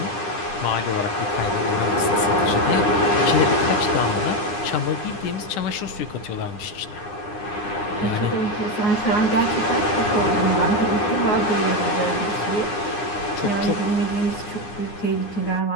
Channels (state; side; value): late; right; 9.8 ms